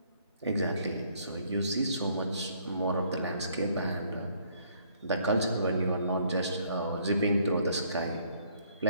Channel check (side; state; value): both; inverted; correlation -0.65